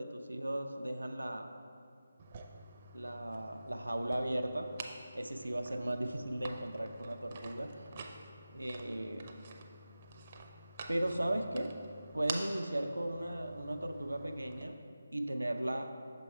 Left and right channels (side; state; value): both; inverted; correlation -0.95